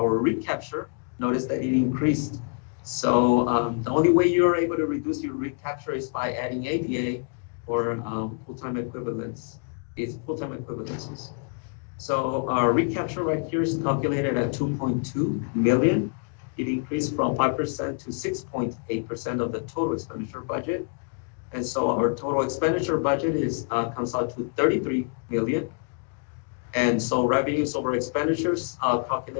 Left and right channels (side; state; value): right; quieter; 39.9 dB